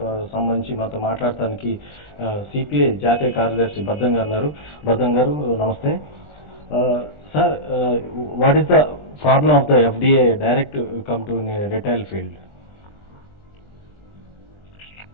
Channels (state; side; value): late; right; 20 ms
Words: సంబంధించి మాతో మాట్లాడటానికి సిపిఐ జాతీయ కార్యదర్శి బర్ధన్ గారు ఉన్నారు. బర్ధన్ గారు నమస్తే. Sir, what is the problem of the FDA direct come to retail field?